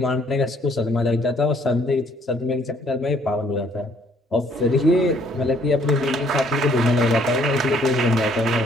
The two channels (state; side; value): normal; both; correlation 0.63